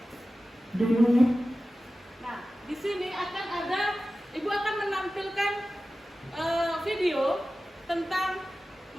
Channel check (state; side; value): normal; both; correlation 0.95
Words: Nah, di sini akan ada, Ibu akan menampilkan video tentang